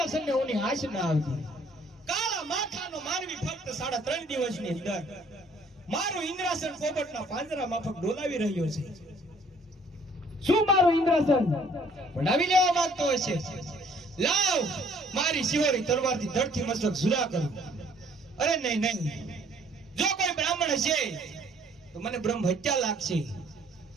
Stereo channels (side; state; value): both; normal; correlation 0.59